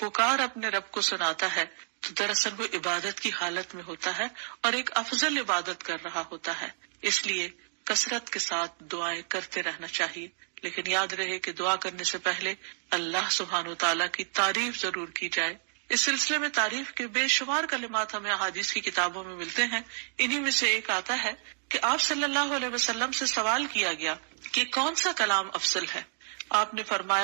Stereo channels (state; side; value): silent; left; digital silence